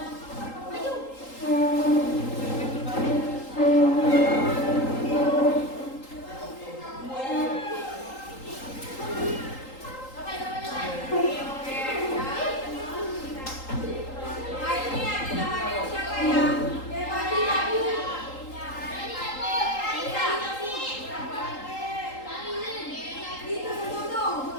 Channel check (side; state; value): right; late; 3.8 ms